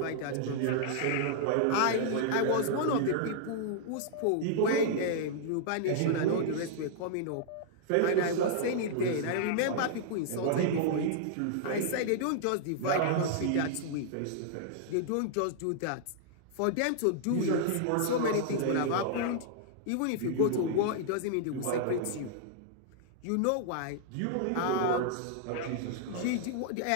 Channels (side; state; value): both; different; correlation -0.01